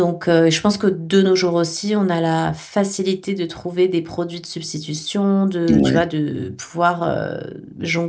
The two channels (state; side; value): identical; both; correlation 1.00